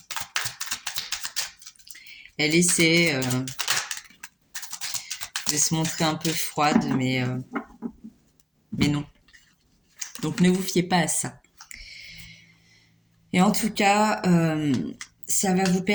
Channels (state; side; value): identical; both; correlation 1.00